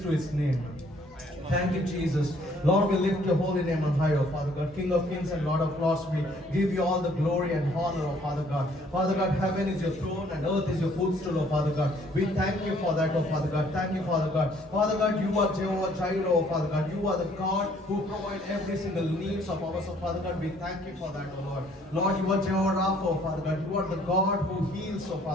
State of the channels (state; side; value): normal; both; correlation 0.61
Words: to His name? Thank you, Jesus. Lord, we lift your holy name on high, oh Father God, King of kings and Lord of lords. We give you all the glory and honor, oh Father God. Father God, heaven is your throne and earth is your footstool, oh Father God. We thank you for that, oh Father God. Thank you, Father God. Father God, you are Jehovah Jireh, oh Father God. You are the God who provides every single needs of ours, oh Father God. We thank you for that, oh Lord. Lord, you are Jehovah Rapha, oh Father God. You are the God who heals, oh